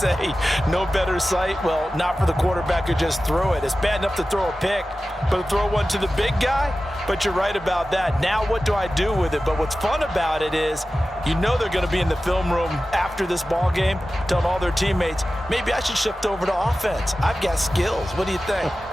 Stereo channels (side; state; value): both; normal; correlation 0.95